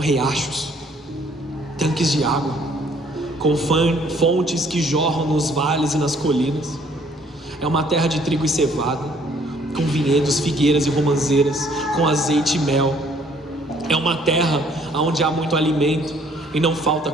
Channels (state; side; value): normal; both; correlation 0.61